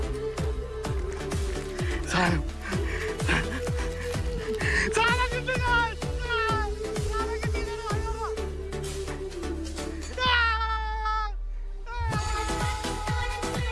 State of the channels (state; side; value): identical; both; correlation 1.00